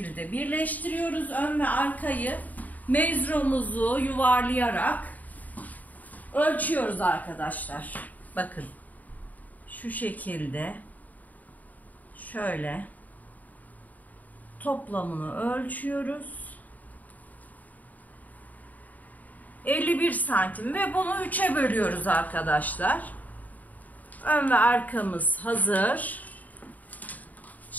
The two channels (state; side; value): late; right; 0.077 ms